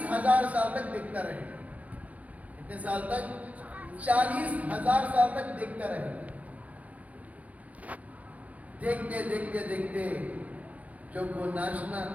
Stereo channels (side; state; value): left; late; 0.071 ms